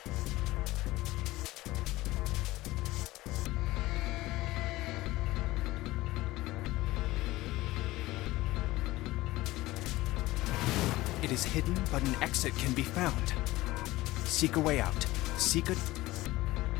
It is hidden, but an exit can be found. Seek a way out. Seek a...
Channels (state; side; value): quieter; right; 18.4 dB